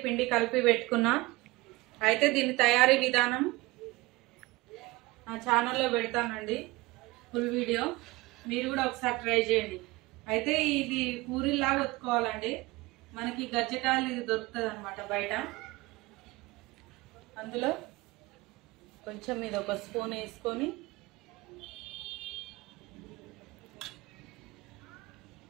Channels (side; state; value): left; quieter; 21.3 dB